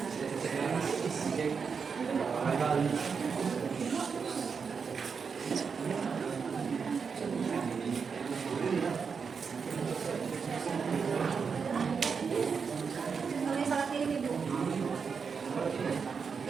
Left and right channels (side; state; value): left; quieter; 5.8 dB